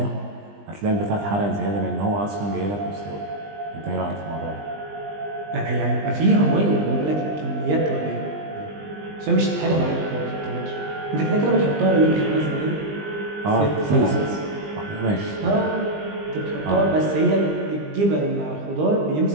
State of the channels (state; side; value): late; left; 20 ms